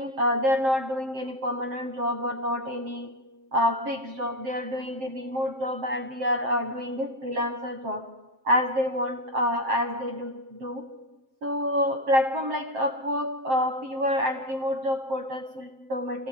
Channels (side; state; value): left; late; 7.6 ms